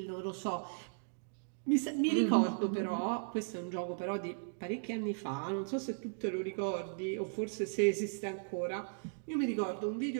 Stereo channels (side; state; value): left; silent; digital silence